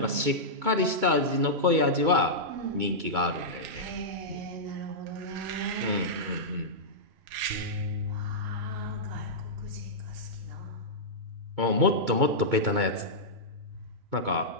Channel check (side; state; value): left; late; 2.2 ms